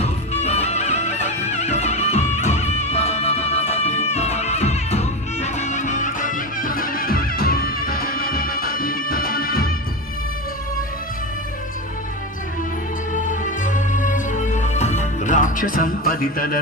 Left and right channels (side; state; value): both; normal; correlation 0.20